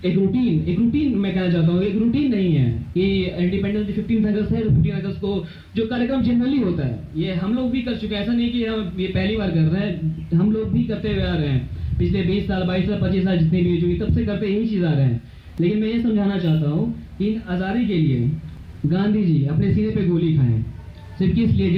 एक रूटीन मैं कहना चाहता हूँ, एक रूटीन नहीं है कि इंडिपेंडेंस डे 15 अगस्त है, 15 अगस्त को जो कार्यक्रम जनरली होता है ये हम लोग भी कर चुके हैं। ऐसा नहीं कि हम ये पहली बार कर रहे हैं, हम लोग भी करते हुए आ रहे हैं पिछले 20 साल 22 साल 25 साल जितनी भी हुई तब से करते यही चीज़ आ रहे हैं। लेकिन मैं ये समझाना चाहता हूँ कि इन आज़ादी के लिए गांधी जी अपने सीने पे गोली खाएं, सिर्फ किस लिए?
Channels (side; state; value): both; identical; correlation 1.00